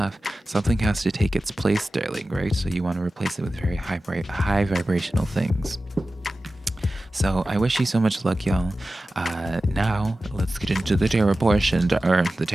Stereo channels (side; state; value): both; normal; correlation 0.95